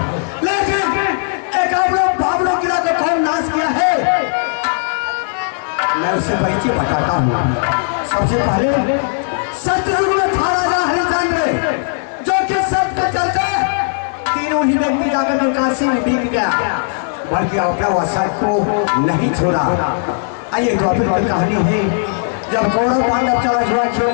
लेकिन एकावनो बावनो किला को कौन नाच किया है, मैं उससे परिचय बताता हूँ। सबसे पहले सतयुग में था राजा हरिश्चंद्र, जो कि सत्य के चलते तीनों ही व्यक्ति जाकर के काशी में बिक गया, बल्कि अपना वसत को नहीं छोड़ा। आइए द्वापर की कहानी है, जब कौरव पांडव चला जुआ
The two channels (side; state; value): right; silent; 62 dB below the other